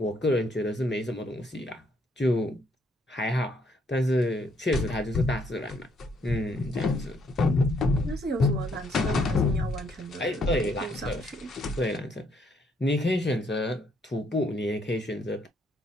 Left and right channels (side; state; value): both; normal; correlation 0.70